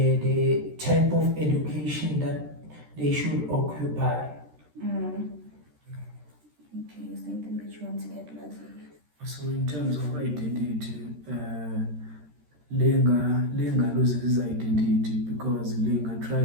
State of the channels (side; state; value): left; late; 13 ms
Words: type of education that they should occupy. Okay, is there anything that you want to add, Lwazi? So in terms of identity, Lenga loses his identity because Lenga